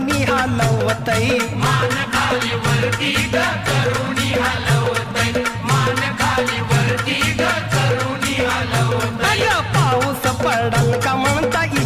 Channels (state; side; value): identical; both; correlation 1.00